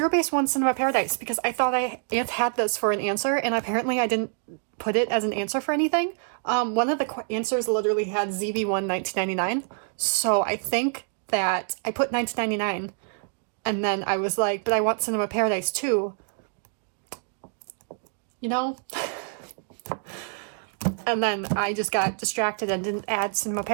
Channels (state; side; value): silent; left; 61 dB below the other